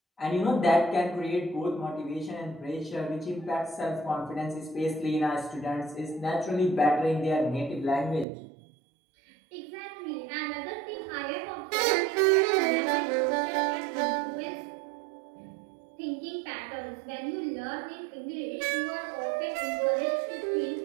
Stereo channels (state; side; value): drops out; left; at 8.2 s